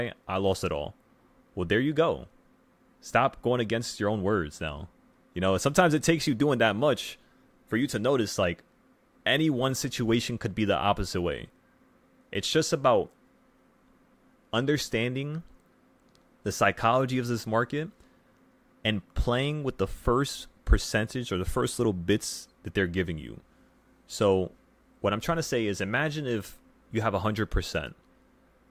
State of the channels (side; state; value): both; identical; correlation 1.00